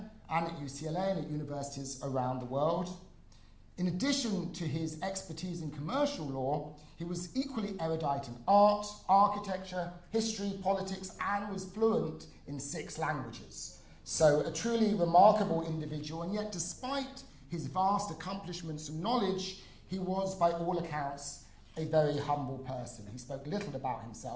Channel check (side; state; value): both; identical; correlation 1.00